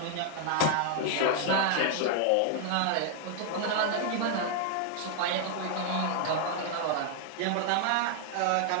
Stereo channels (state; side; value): different; both; correlation 0.00